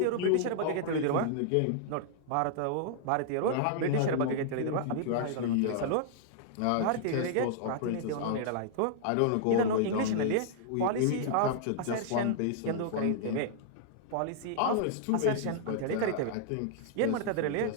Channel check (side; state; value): both; different; correlation -0.01